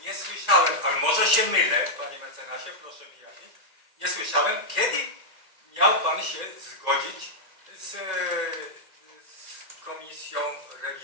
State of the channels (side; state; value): left; late; 2.0 ms